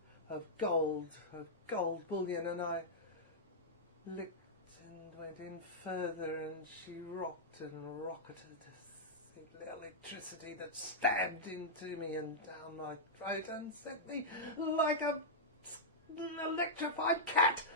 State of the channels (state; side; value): normal; both; correlation -0.10